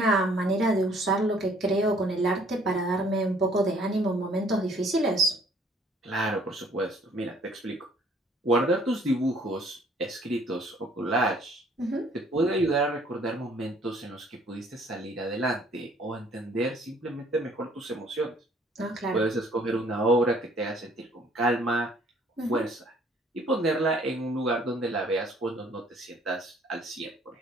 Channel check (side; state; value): both; normal; correlation 0.59